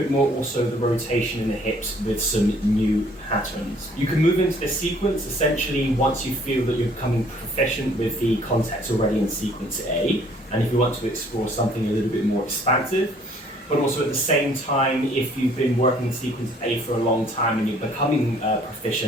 more also the rotation in the hips with some new patterns. You can move into the sequence essentially once you feel that you're becoming proficient with the contacts already in sequence A, and if you want to explore something a little bit more expansive. But also at the same time, if you've been working in sequence A for a long time and you're becoming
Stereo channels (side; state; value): both; normal; correlation 0.59